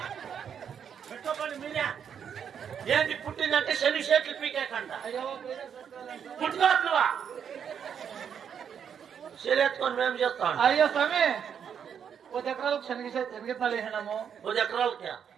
పెట్టుకోండి మీరే. ఏంటి పుట్టిందంటే శని షేట్లు పీకేకంట. పుట్టుకోవట్లువా? శరీరెత్తుకొని మేము చేస్తాం. అయ్యో స్వామి 10 ఎకరాలకు శనగెత్తాలు వేసినాము. 10 ఎకరాలకి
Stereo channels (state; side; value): quieter; left; 7.9 dB